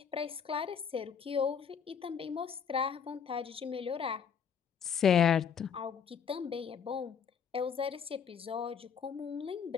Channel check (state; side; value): quieter; right; 7.1 dB